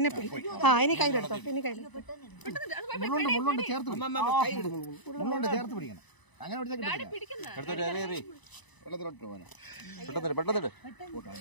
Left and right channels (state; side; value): late; right; 1.0 ms